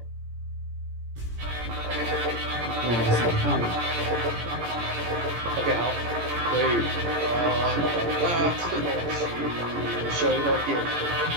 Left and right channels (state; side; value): late; left; 17 ms